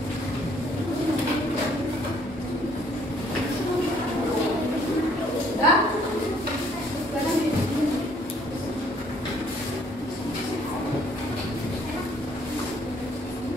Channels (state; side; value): normal; both; correlation 0.63